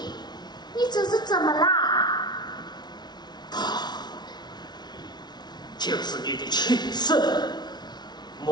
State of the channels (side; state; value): right; late; 0.20 ms